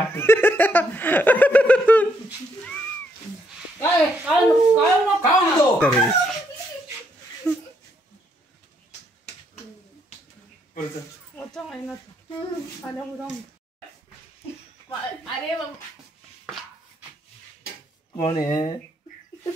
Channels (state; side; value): normal; both; correlation 0.74